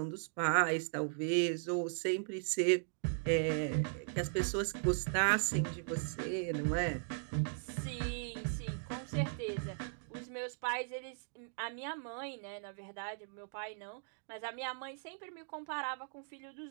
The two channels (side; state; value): left; silent; digital silence